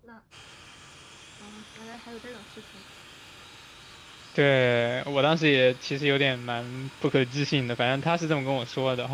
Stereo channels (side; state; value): both; identical; correlation 1.00